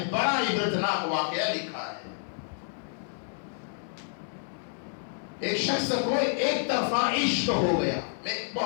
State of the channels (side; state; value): right; silent; digital silence